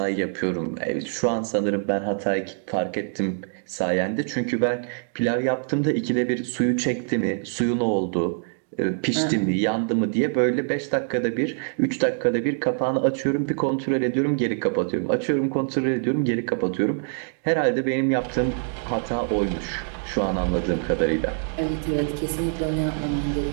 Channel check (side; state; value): left; silent; 59 dB below the other